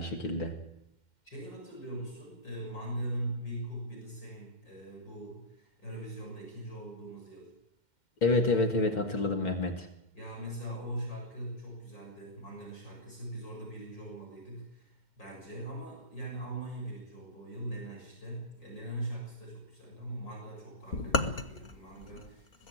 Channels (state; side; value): late; right; 2.1 ms